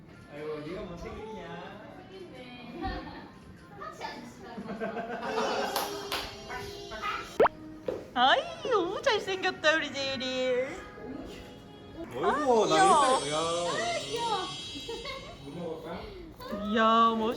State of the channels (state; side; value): identical; both; correlation 1.00